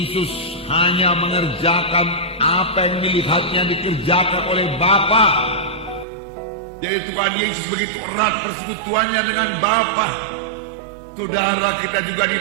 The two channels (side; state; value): left; drops out; at 6.1 s